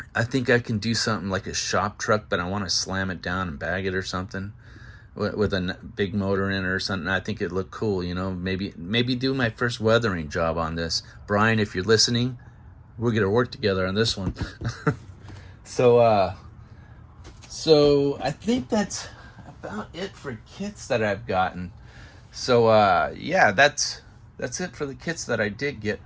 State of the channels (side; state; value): both; identical; correlation 1.00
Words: think I can do something like a shop truck, but I want to slam it down and bag it or something with a big motor in it or something. I think it looked cool, you know. Maybe do my first weathering job on this. Brian, if you're listening, we're gonna work together on this one. So I think that's about it for kits that I've gotten. So yeah, that's it for the kits that I did get.